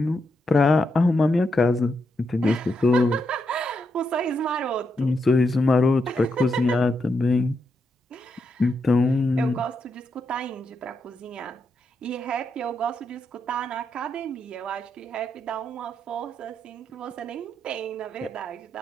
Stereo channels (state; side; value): normal; both; correlation 0.82